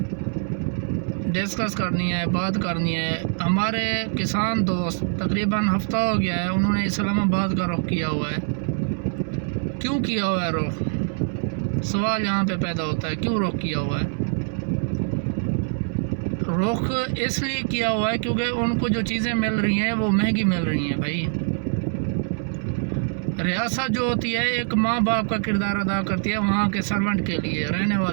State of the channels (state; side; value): silent; left; digital silence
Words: ڈسکس کرنی ہے، بات کرنی ہے، ہمارے کسان دوست تقریباً ہفتہ ہو گیا ہے انہوں نے اسلام آباد کا رخ کیا ہوا ہے. کیوں کیا ہوا ہے رخ؟ سوال یہاں پہ پیدا ہوتا ہے، کیوں رخ کیا ہوا ہے؟ رخ اس لیے کیا ہوا ہے کیونکہ ان کو جو چیزیں مل رہی ہیں وہ مہنگی مل رہی ہیں. بھائی ریاست جو ہوتی ہے ایک ماں باپ کا کردار ادا کرتی ہے وہاں کے سرونٹ کے لیے، رہنے